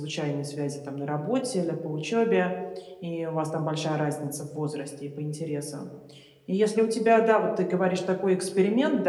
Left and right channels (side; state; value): both; identical; correlation 1.00